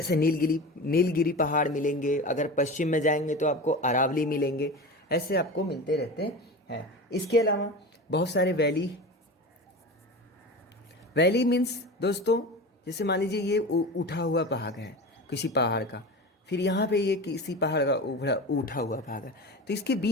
नीलगिरी पहाड़ मिलेंगे। अगर पश्चिम में जाएंगे तो आपको अरावली मिलेंगे। ऐसे आपको मिलते रहते हैं। इसके अलावा बहुत सारे वैली मीन्स दोस्तों, जैसे मान लीजिए ये उठा हुआ पहाड़ है किसी पहाड़ का, फिर यहाँ पे ये किसी पहाड़ का उठा हुआ पहाड़ है, तो इसके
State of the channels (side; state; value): both; normal; correlation 0.30